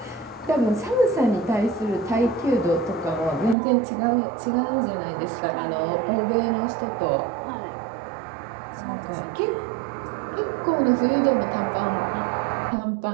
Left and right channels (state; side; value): drops out; left; at 3.6 s